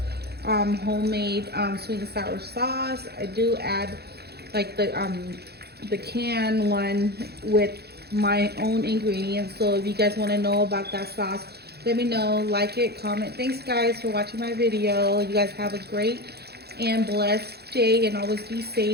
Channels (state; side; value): late; left; 0.47 ms